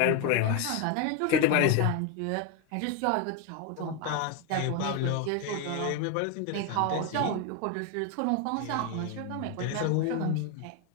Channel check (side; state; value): both; different; correlation 0.02